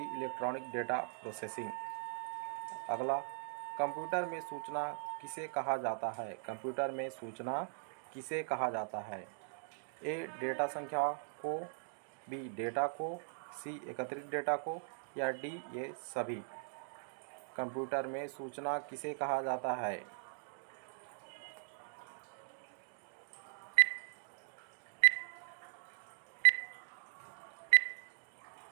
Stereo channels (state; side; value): silent; left; digital silence